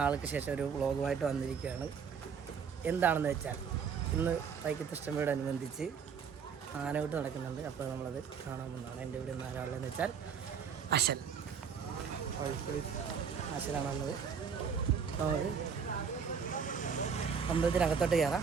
ശേഷം ഒരു വ്ളോഗുമായിട്ട് വന്നിരിക്കുകയാണ്. എന്താണെന്ന് വെച്ചാൽ ഇന്ന് വൈക്കത്തഷ്ടമിയോടനുബന്ധിച്ച് ആനകൂട്ട് നടക്കുന്നുണ്ട്. അപ്പോൾ നമ്മളത് കാണാൻ വന്നതാണ്. എൻ്റെ ഇവിടെ നിന്ന് ആരാളെന്ന് വെച്ചാൽ അശലാണുള്ളത്. അപ്പോൾ അമ്പലത്തിനകത്തോട്ട് കയറാം.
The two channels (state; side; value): quieter; left; 6.6 dB